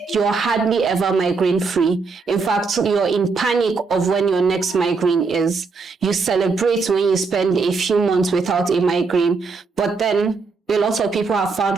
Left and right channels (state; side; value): quieter; left; 4.5 dB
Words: ever migraine free. In fact, you're in panic of when your next migraine is. You celebrate when you spend a few months without a migraine, but then a lot of people have